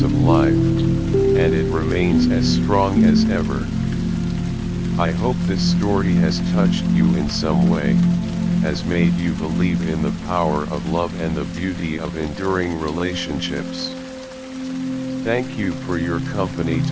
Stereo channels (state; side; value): identical; both; correlation 1.00